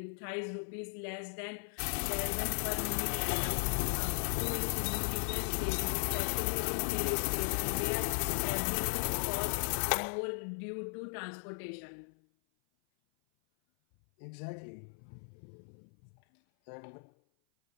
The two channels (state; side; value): silent; right; 54 dB below the other